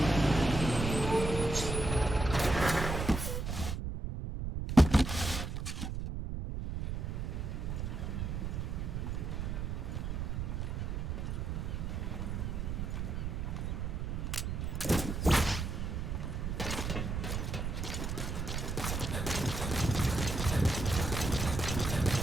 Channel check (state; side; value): noise; right; rumble, 3 dB below the sound